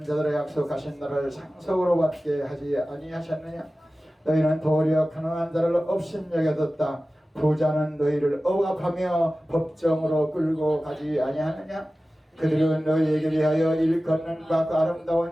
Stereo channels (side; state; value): both; normal; correlation 0.96